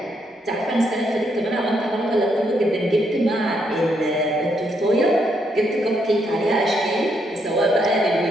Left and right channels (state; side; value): normal; both; correlation 0.76